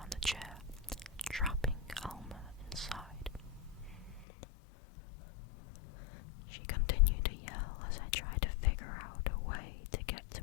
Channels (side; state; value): right; drops out; at 4.2 s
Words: the chair, trapping Alma inside. She continued to yell as I tried to figure out a way to get